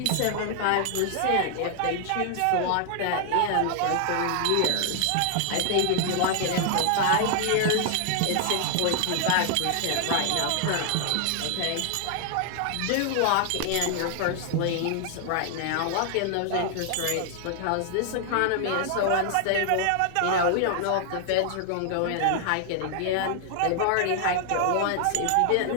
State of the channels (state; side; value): different; both; correlation 0.00